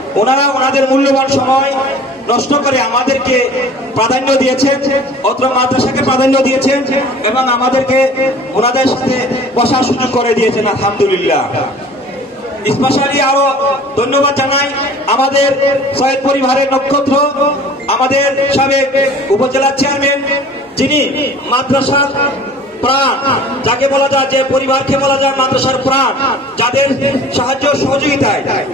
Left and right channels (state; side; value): normal; both; correlation 0.46